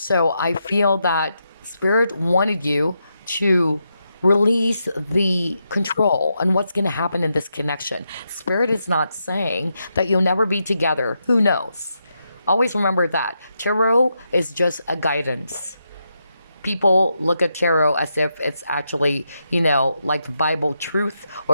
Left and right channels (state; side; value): inverted; both; correlation -0.83